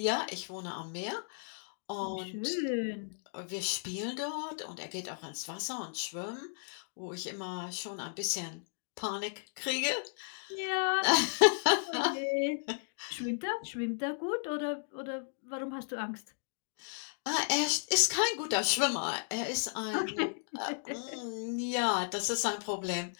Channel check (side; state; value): right; silent; digital silence